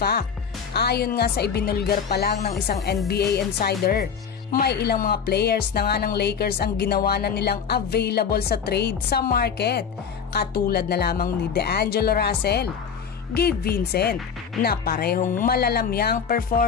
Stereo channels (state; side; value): quieter; right; 6.8 dB